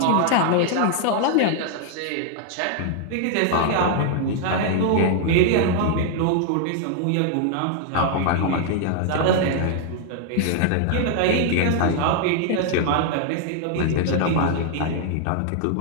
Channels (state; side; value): different; both; correlation 0.00